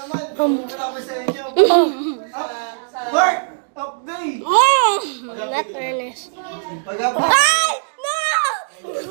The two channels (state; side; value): silent; left; digital silence